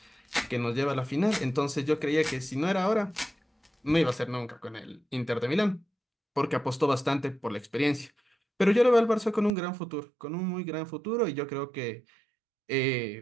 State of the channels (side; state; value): left; drops out; at 9.5 s